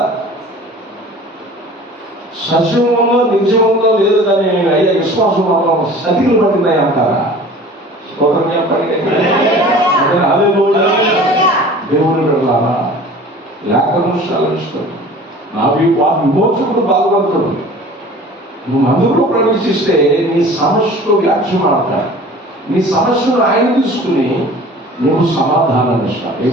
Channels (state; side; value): normal; both; correlation 0.44